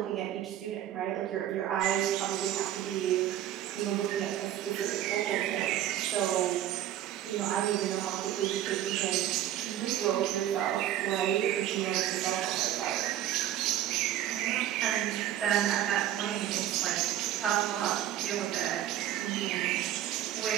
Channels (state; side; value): quieter; left; 12.0 dB